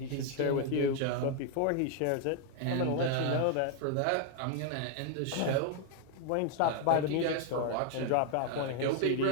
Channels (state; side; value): different; both; correlation 0.00